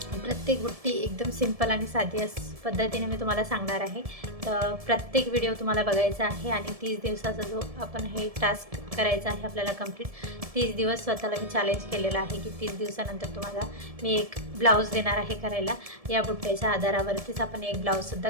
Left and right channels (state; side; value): late; left; 1.7 ms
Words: प्रत्येक बुट्टी एकदम सिंपल आणि साधी पद्धतीने मी तुम्हाला सांगणार आहे. तर प्रत्येक व्हिडिओ तुम्हाला बघायचा आहे आणि 30 दिवसाचा जो आपण हे टास्क करायचा आहे आपल्याला कंप्लीट. 30 दिवस स्वतःला मी चॅलेंज केलेलं आहे की 30 दिवसानंतर तुम्हाला मी एक ब्लाऊज देणार आहे करायला. या बुट्ट्याच्या आधारावरतीच आपण एक ब्लाऊजसुद्धा